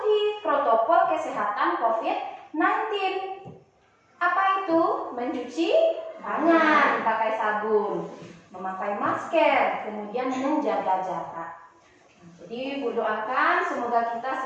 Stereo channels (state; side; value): identical; both; correlation 1.00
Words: protokol kesehatan COVID-19. Apa itu? Mencuci tangan pakai sabun, memakai masker, kemudian menjaga jarak. Jadi Ibu doakan semoga kita